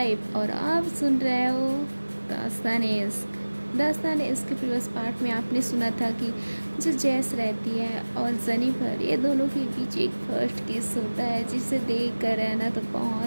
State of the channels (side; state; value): both; inverted; correlation -1.00